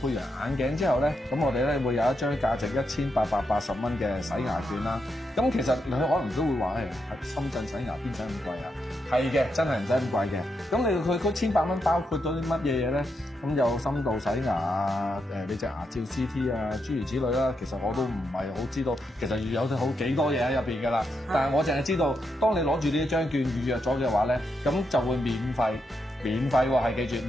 完眼鏡之後咧，咁我哋咧會有一張價值1880蚊嘅洗牙券啦。咁其實你可能都會話係深圳洗牙邊使咁貴啊？係嘅，真係唔使咁貴嘅。咁你佢1,800蚊包括咗啲乜嘢嘢咧？咁有深度洗牙啊，你隻牙照 CT 啊，諸如此類啦。其實我都唔係好知道，其實有好幾多嘢喺入邊㗎啦。但係我淨係知道，當你攞住呢一張券預約咗嘅話咧，咁就會免費喎，係記住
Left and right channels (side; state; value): both; normal; correlation 0.83